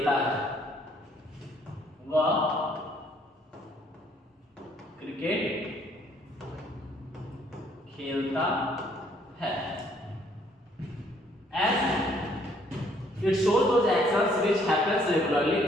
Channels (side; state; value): both; normal; correlation 0.65